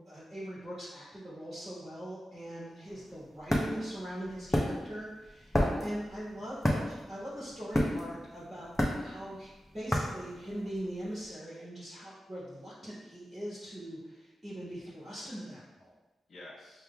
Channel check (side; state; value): both; normal; correlation 0.94